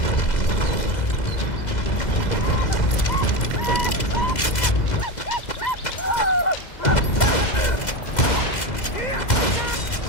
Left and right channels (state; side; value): late; right; 2.0 ms